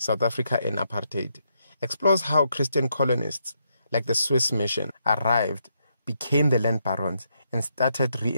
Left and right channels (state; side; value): inverted; both; correlation -0.78